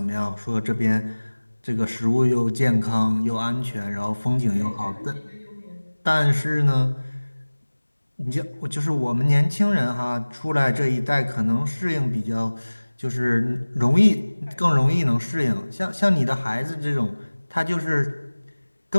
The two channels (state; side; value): inverted; both; correlation -1.00